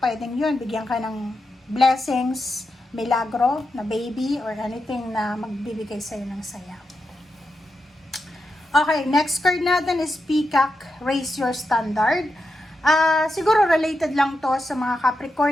pwedeng yun, bigyan ka ng blessings, milagro na baby or anything na magbibigay sa iyo ng saya. Okay, next card natin is Peacock, Raise Your Standard. Siguro related lang to sa mga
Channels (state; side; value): normal; both; correlation 0.87